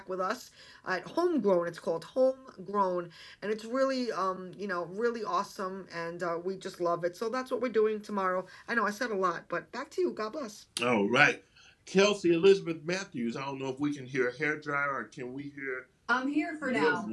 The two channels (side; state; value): both; identical; correlation 1.00